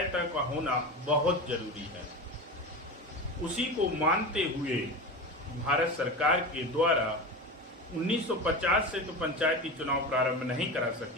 का होना बहुत जरूरी है। उसी को मानते हुए भारत सरकार के द्वारा 1950 से तो पंचायती चुनाव प्रारंभ नहीं करा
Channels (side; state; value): both; normal; correlation 0.26